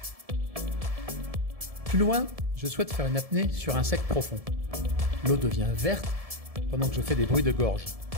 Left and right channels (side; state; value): left; late; 1.7 ms